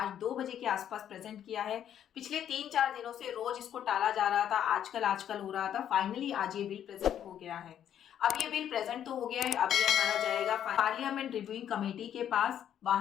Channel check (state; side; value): quieter; right; 9.9 dB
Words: 2 बजे के आसपास प्रेजेंट किया है। पिछले 3-4 दिनों से रोज इसको टाला जा रहा था, आजकल हो रहा था। फाइनली आज ये बिल प्रेजेंट हो गया है। अब ये बिल प्रेजेंट तो हो गया है, अब ये हमारा जाएगा पार्लियामेंट रिव्यूइंग कमेटी के पास।